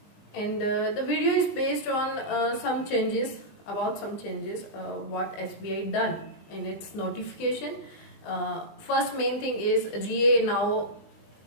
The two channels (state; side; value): late; right; 20 ms